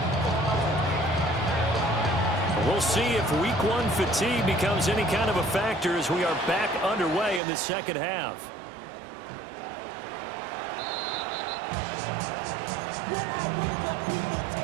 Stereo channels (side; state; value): left; drops out; at 7.4 s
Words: We'll see if week 1 fatigue becomes any kind of a factor as we are back underway in the second half. When I wake up, people